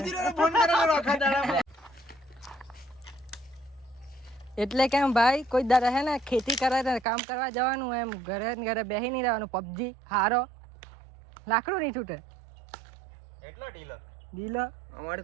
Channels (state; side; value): drops out; left; at 7.1 s